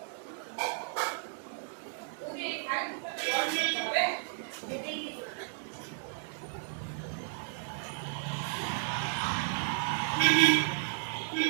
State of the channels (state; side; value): silent; left; 56 dB below the other